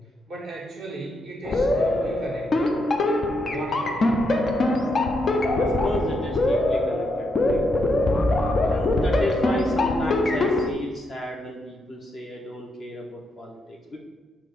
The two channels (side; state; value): both; normal; correlation 0.80